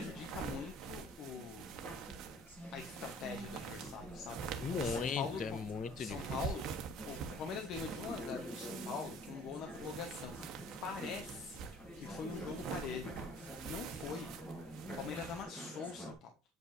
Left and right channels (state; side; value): normal; both; correlation 0.52